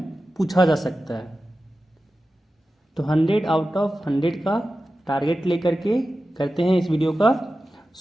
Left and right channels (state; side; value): normal; both; correlation 0.93